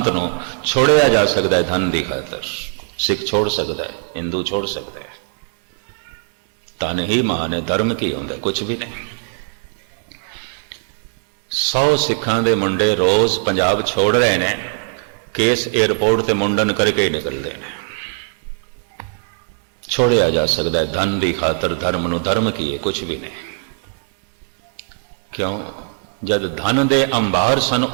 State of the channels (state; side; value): silent; left; digital silence